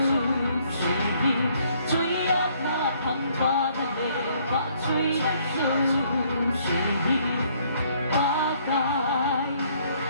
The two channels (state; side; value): inverted; both; correlation -0.65